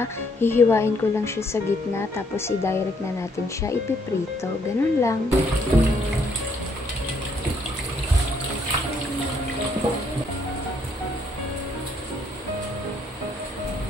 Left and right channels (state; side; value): normal; both; correlation 0.69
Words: Hihiwain ko lang siya sa gitna tapos i-direct na natin siya ipiprito. Ganun lang.